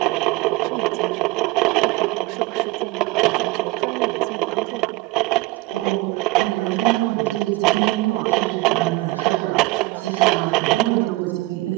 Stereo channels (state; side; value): quieter; left; 21.1 dB